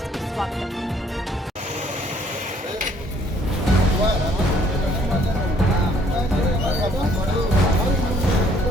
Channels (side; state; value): both; normal; correlation 0.63